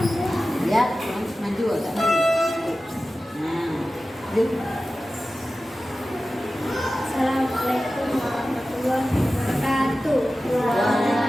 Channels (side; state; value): both; normal; correlation 0.95